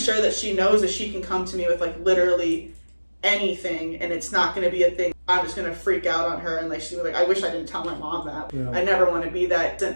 that she knows that she can come to me with like literally anything, and it's not going to be a thing I'm just going to freak out on her and like she's like, I wish I didn't tell my mom that. Yeah. I never want to be that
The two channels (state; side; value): inverted; both; correlation -1.00